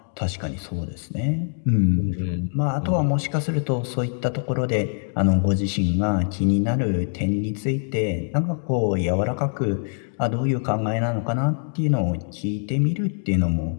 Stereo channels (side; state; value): right; silent; 60 dB below the other